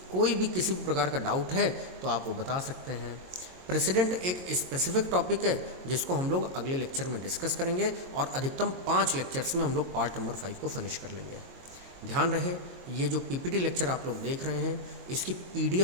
कोई भी किसी भी प्रकार का डाउट है तो आप वो बता सकते हैं। प्रेसिडेंट एक स्पेसिफिक टॉपिक है जिसको हम लोग अगले लेक्चर में डिस्कस करेंगे और अधिकतम 5 लेक्चर्स में हम लोग पार्ट नंबर 5 को फिनिश कर लेंगे। ध्यान रहे, ये जो पीपीटी लेक्चर आप लोग देख रहे हैं, इसकी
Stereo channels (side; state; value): left; late; 22 ms